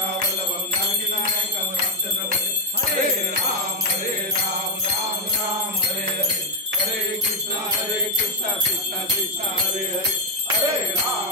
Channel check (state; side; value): normal; both; correlation 0.03